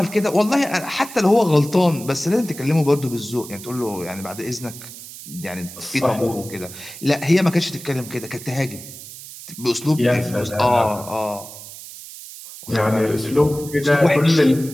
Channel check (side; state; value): right; noise; hiss, 14 dB below the sound